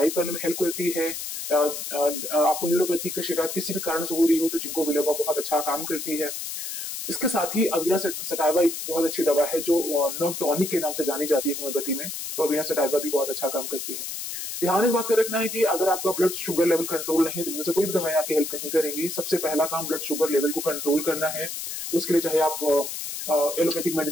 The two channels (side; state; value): left; noise; hiss, 6 dB below the sound